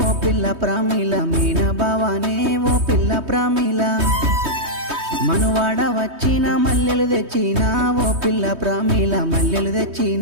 పిల్ల ప్రామిల మేన బావానే ఓ పిల్ల ప్రామిల మనువాడ వచ్చిన మల్లెలు తెచ్చినా ఓ పిల్ల ప్రామిల మల్లెలు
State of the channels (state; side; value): late; left; 3.2 ms